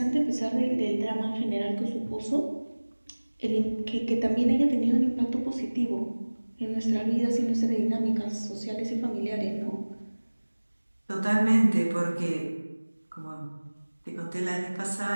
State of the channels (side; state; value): both; inverted; correlation -1.00